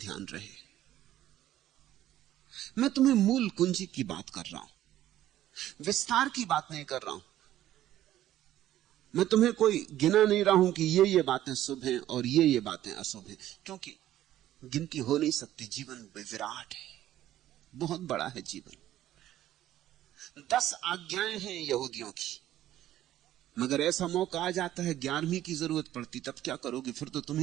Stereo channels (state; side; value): quieter; left; 13.1 dB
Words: रहे। मैं तुम्हें मूल कुंजी की बात कर रहा हूं, विस्तार की बात नहीं कर रहा हूं। मैं तुम्हें कोई गिना नहीं रहा हूं कि ये बातें शुभ हैं और ये बातें अशुभ हैं, क्योंकि गिनती हो नहीं सकती। जीवन विराट है, बहुत बड़ा है जीवन। 10 आज्ञाएं हैं यहूदियों की, मगर ऐसा मौका आ जाता है 11वीं की जरूरत पड़ती, तब क्या करोगे? फिर तो तुम